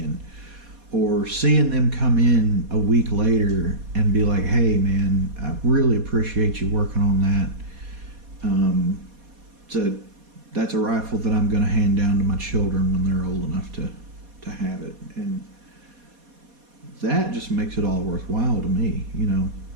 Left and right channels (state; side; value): late; left; 4.2 ms